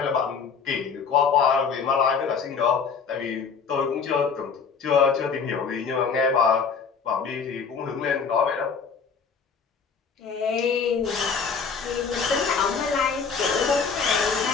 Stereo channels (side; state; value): right; quieter; 5.8 dB